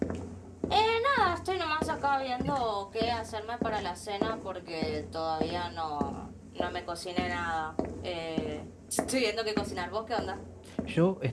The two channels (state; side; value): identical; both; correlation 1.00